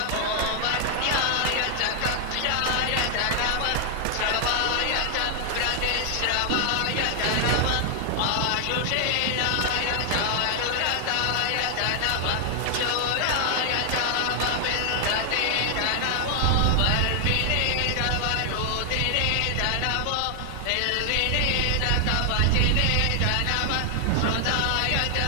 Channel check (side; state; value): both; different; correlation 0.00